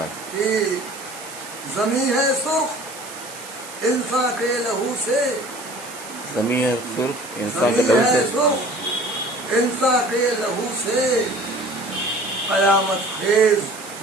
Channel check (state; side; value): noise; right; hiss, 15 dB below the sound